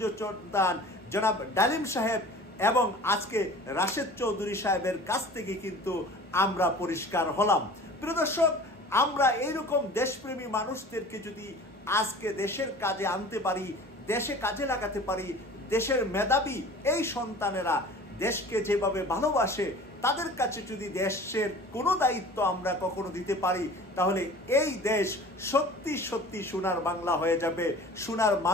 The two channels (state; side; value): normal; both; correlation 0.43